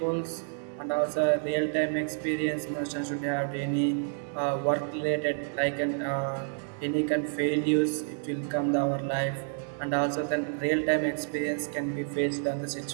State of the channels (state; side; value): silent; left; 58 dB below the other